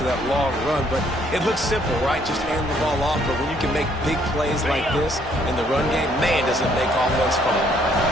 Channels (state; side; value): normal; both; correlation 0.66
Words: that long run, but it looks simple, right? Just hand the ball off, but when you can make big plays like this in the run game, man, does it make offense fun.